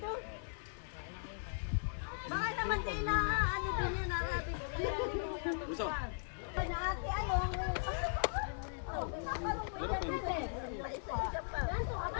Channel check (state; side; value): silent; right; digital silence